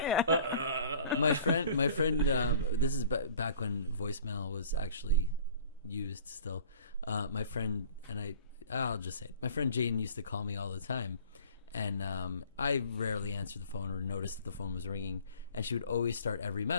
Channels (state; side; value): inverted; both; correlation -0.49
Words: My friend. This is back when voicemail was actually used still. My friend and I'll just say it. My friend Jane used to call me all the time. And I rarely answered the phone or noticed that the phone was ringing. And she would always start every